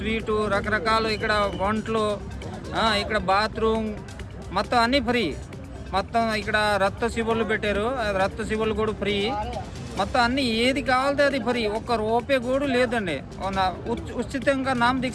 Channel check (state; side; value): identical; both; correlation 1.00